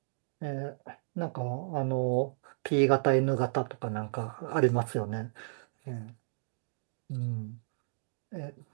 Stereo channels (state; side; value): silent; left; digital silence